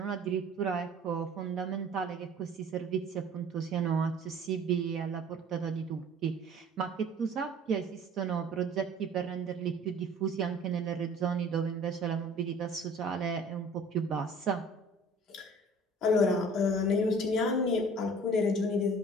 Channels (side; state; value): both; normal; correlation 0.48